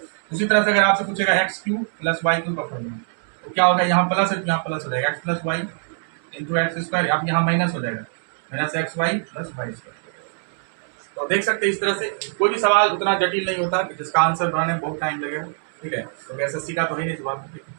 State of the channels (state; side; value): silent; left; digital silence